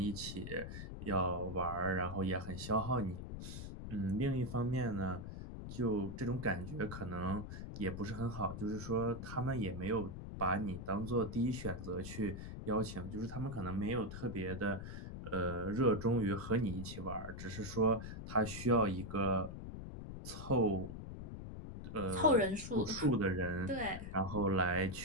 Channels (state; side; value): noise; left; rumble, 8 dB below the sound